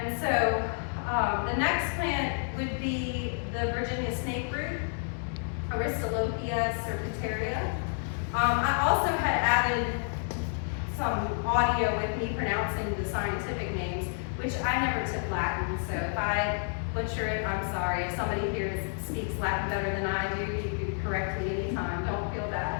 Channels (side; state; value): right; silent; 58 dB below the other